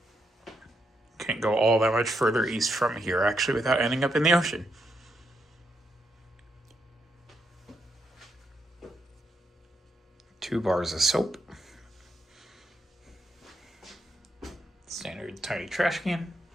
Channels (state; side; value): normal; both; correlation 0.80